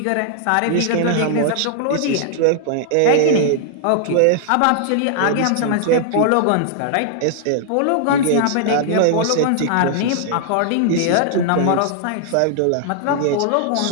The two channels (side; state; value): both; different; correlation -0.01